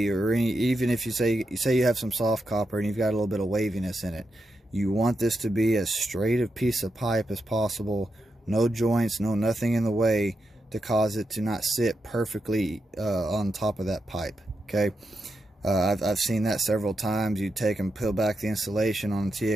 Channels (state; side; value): normal; both; correlation 0.86